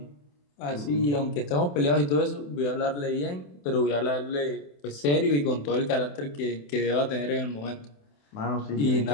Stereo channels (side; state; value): right; late; 28 ms